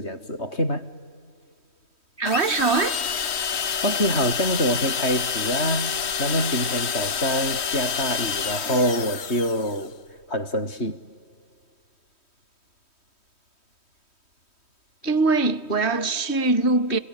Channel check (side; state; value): right; late; 3.1 ms